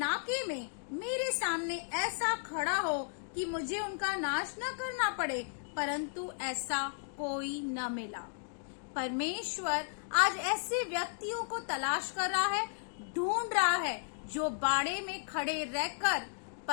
में मेरे सामने ऐसा खड़ा हो कि मुझे उनका नाश न करना पड़े, परंतु ऐसा कोई न मिला। परमेश्वर आज ऐसे व्यक्तियों को तलाश कर रहा है, ढूंढ रहा है, जो बाड़े में खड़े रहकर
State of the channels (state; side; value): silent; right; digital silence